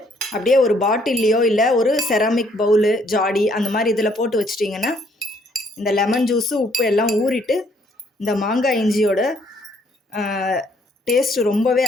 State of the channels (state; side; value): normal; both; correlation 0.66